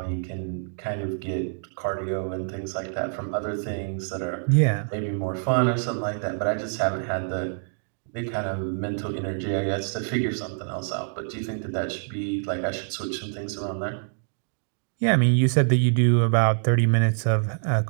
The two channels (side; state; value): left; silent; digital silence